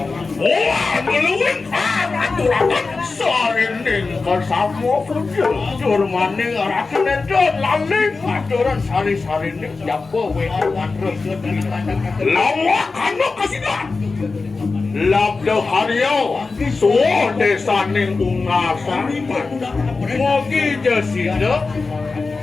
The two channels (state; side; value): quieter; right; 4.1 dB